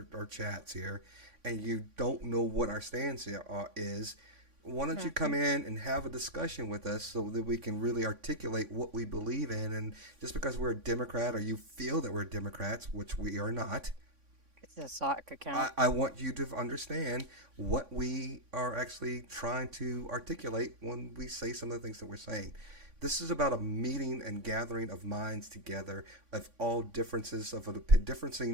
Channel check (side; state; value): left; late; 3.5 ms